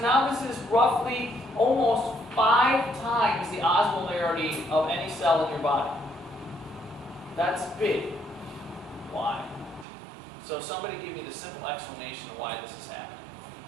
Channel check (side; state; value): left; drops out; at 9.9 s